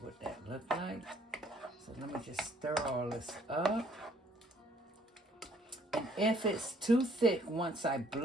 that looks like. So let me just stir all this up. And if it's too thick, once I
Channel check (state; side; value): normal; both; correlation 0.62